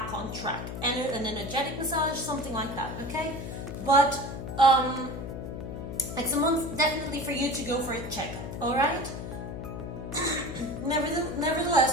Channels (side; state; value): left; noise; hum, 7 dB below the sound